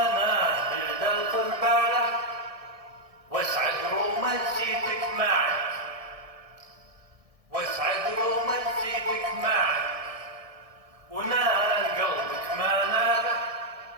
بدل قرباله واسعد رومانسيتك معك واسعد رومانسيتك معك ونال قلبك ما ناله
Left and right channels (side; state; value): left; late; 1.6 ms